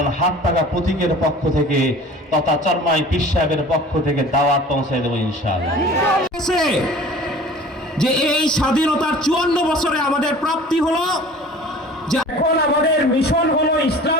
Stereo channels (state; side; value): normal; both; correlation 0.44